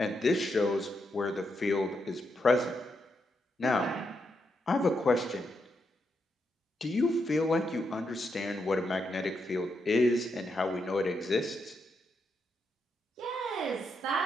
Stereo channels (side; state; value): both; normal; correlation 0.82